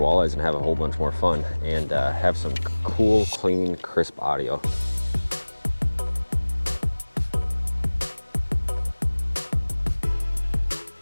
and have a whole bunch more fun and have some cool, clean, crisp audio.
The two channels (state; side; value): inverted; both; correlation -1.00